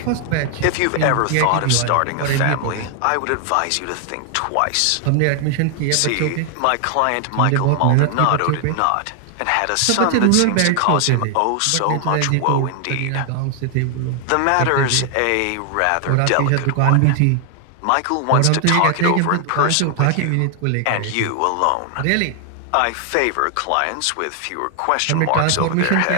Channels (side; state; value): both; different; correlation 0.00